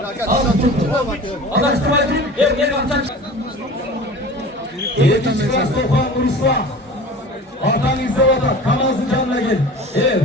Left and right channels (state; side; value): normal; both; correlation 0.38